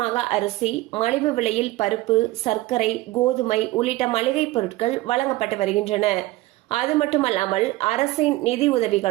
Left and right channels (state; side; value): quieter; left; 18.3 dB